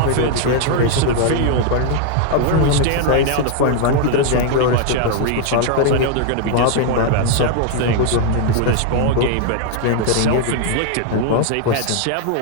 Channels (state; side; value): different; both; correlation 0.00